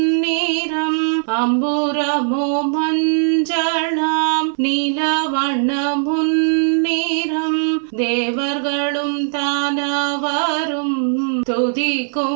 அம்புரமோ மஞ்சளாம் நீலவண்ணம் முன்னிறம் தேவர்களும் தானவரும்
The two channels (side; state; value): left; silent; digital silence